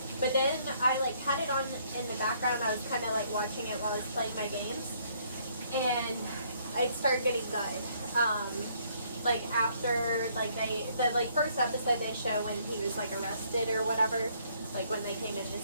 But then I, like, had it on in the background. I was kind of, like, watching it while I was playing my games, and it started getting good. Like, after, like, the first episode they show when he was, like, arrested or whatever, like, when they came into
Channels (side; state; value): both; inverted; correlation -0.66